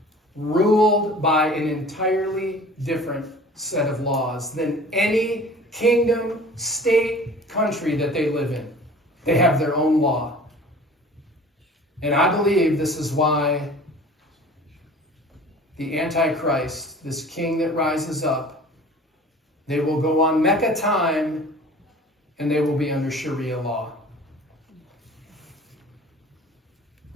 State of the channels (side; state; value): both; normal; correlation 0.44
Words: ruled by an entirely different set of laws than any kingdom, state, country that they live in. They have their own law. And I believe this is why the Antichrist, this king that rises up, they will go on Mecca time and they will be under Sharia law.